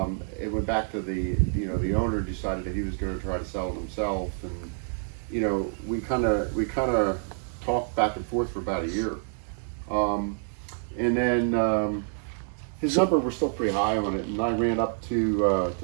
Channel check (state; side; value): silent; left; 60 dB below the other